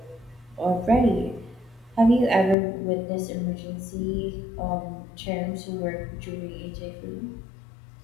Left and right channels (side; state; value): right; drops out; at 2.6 s